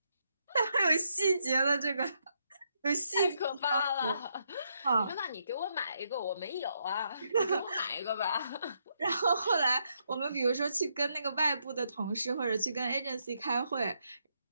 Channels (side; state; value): both; inverted; correlation -0.78